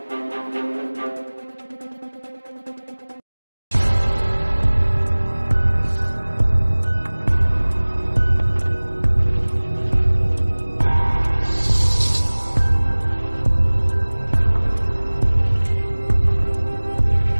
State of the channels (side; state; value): both; inverted; correlation -1.00